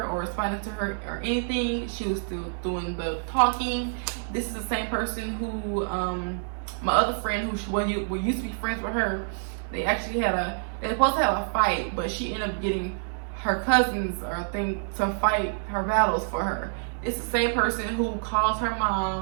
or responding to her or anything, she was still doing the talking. This is the same person who, my other friend who we used to be friends with her, they actually they were supposed to have a fight, but she ended up getting her cousins or thing to fight her battles for her. It's the same person who calls her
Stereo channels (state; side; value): silent; left; digital silence